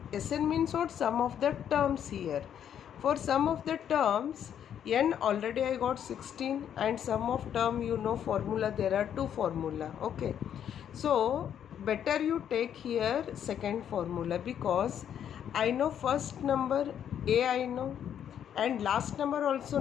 Sn means what? Sum of the terms here. For sum of the terms, n already I got 16, and sum of term, you know formula, there are two formula. Okay, so better you take here second formula, because I know first number a, I know, and last number also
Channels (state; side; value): quieter; right; 9.3 dB